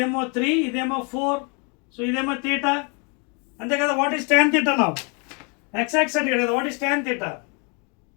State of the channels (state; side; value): quieter; right; 34.3 dB